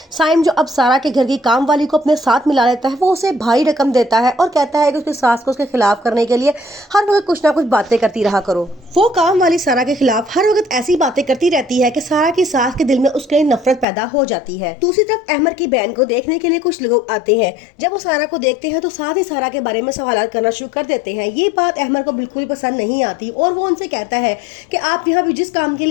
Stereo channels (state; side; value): drops out; right; at 13.9 s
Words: साइम जो अब सारा के घर की काम वाली को अपने साथ मिला लेता है, वो उसे भारी रकम देता है और कहता है कि उसकी सास को उसके खिलाफ करने के लिए हर वक्त कुछ ना कुछ बातें करती रहा करो। वो काम वाली सारा के खिलाफ हर वक्त ऐसी बातें करती रहती है कि सारा की सास के दिल में उसके लिए नफरत पैदा हो जाती है। दूसरी तरफ अहमद की बहन को देखने के लिए कुछ लोग आते हैं। जब वो सारा को देखते हैं तो साथ ही सारा के बारे में सवाल करना शुरू कर देते हैं। ये बात अहमद को बिल्कुल पसंद नहीं आती और वो उनसे कहता है कि आप यहाँ पे जिस काम के